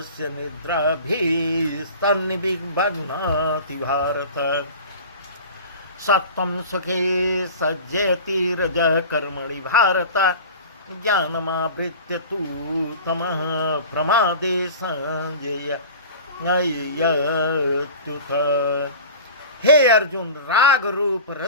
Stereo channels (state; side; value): inverted; both; correlation -0.37